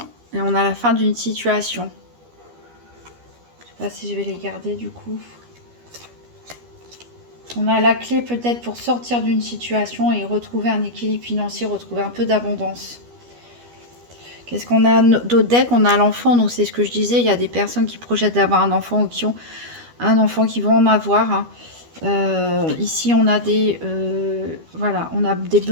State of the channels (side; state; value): left; late; 12 ms